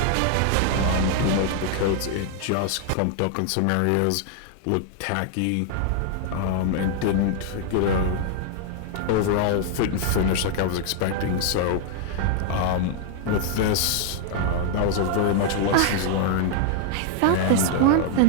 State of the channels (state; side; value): different; both; correlation 0.00